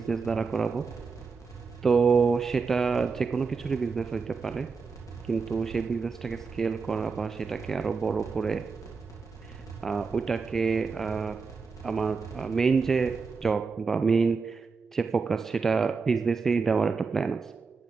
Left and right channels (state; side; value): quieter; left; 4.9 dB